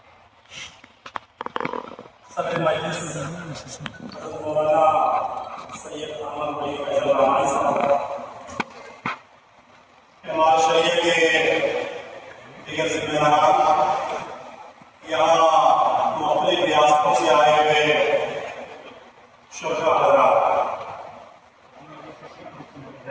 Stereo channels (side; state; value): both; identical; correlation 1.00